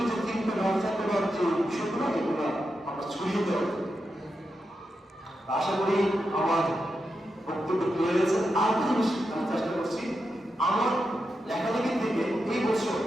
যে চিন্তা ভাবনা করার যে বিষয়গুলো, এগুলো আমরা ছড়িয়ে দেওয়া। আশা করি আমার বক্তব্য ক্লিয়ার হয়েছে। আর একটা জিনিস আমি চেষ্টা করছি, আমার লেখালেখি থেকে এই বছর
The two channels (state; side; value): normal; both; correlation 0.87